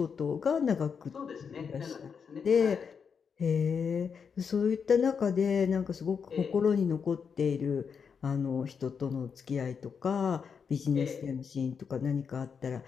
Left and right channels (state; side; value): quieter; right; 6.3 dB